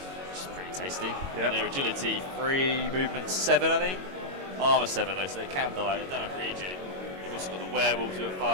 which is pretty tasty. Yeah. And their agility 3 movement 7, I think. Armor 7 though, so they can die. They don't have regen. You've also got the werewolves who are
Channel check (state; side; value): late; left; 22 ms